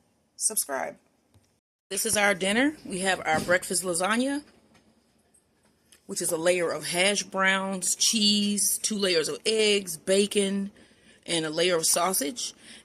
subscribe. This is our dinner. We have our breakfast lasagna, which is a layer of hash browns, cheese, 2 layers of eggs, bacon, and a layer of sausage.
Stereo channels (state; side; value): identical; both; correlation 1.00